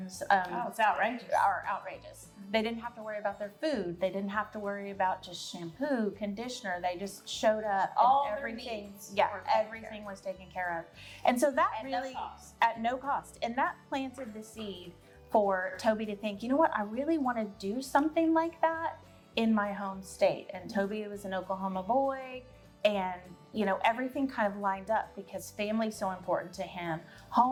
it's outrageous. are outrageous. They didn't have to worry about their food. They didn't have to worry about just shampoo, conditioner. They just showed up All and their everything. needs Yeah, everything was taken care of. And so that At really no cost. at no cost. And that planted the seed for Toby to think, you know what, I really want to do something like that in my home state. And Toby was an Oklahoma boy, and everything kind of lined up because family's so important to him,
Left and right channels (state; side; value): identical; both; correlation 1.00